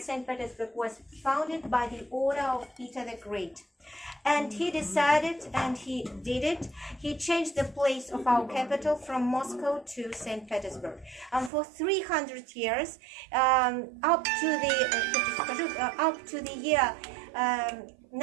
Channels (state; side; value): drops out; left; at 11.5 s